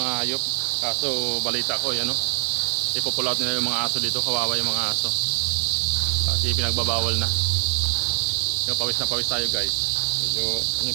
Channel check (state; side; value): silent; left; digital silence